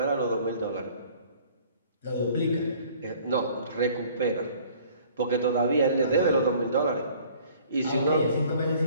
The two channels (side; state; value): both; inverted; correlation -0.53